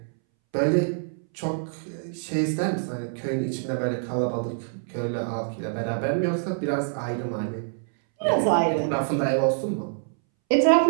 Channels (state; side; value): silent; left; 61 dB below the other